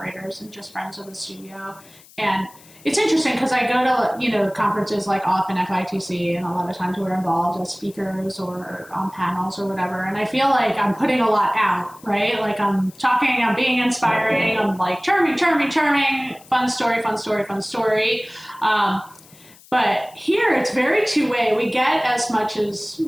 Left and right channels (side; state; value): left; noise; hiss, 24 dB below the sound